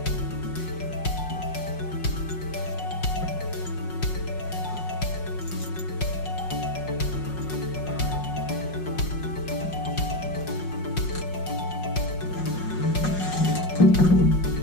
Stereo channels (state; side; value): late; right; 5.5 ms